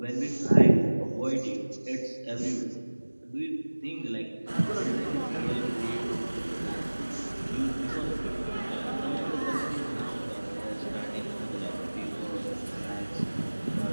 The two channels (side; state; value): both; inverted; correlation -1.00